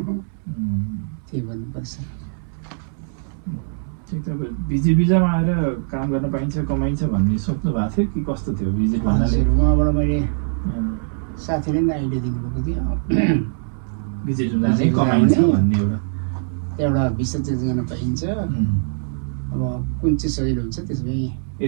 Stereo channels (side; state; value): left; silent; 64 dB below the other